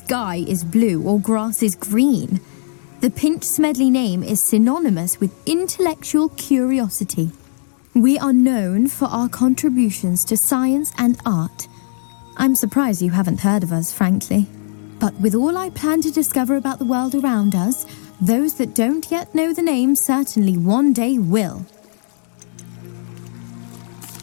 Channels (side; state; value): right; silent; digital silence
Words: is blue or grass is green. The Pinch Smedley name is synonymous with intellectual curiosity. We are known for our contributions to science and art. I'm surprised you haven't heard of us, frankly. But with all I plan to discover about the world around us, those that don't yet know the name certainly one day will.